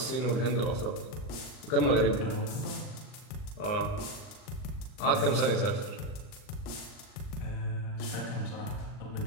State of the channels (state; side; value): late; right; 39 ms